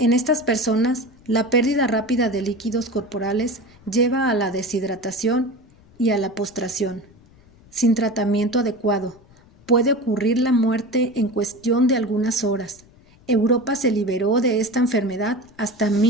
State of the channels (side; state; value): left; noise; rumble, 27 dB below the sound